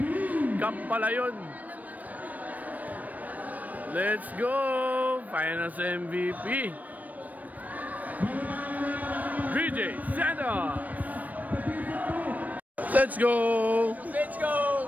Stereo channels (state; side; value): late; left; 0.077 ms